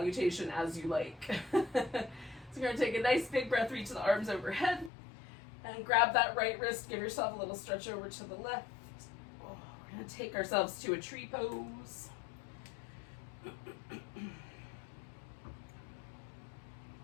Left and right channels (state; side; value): drops out; right; at 4.9 s